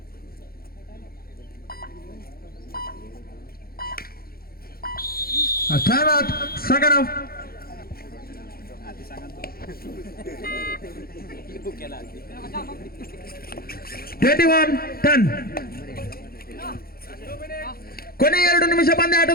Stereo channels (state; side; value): late; right; 0.44 ms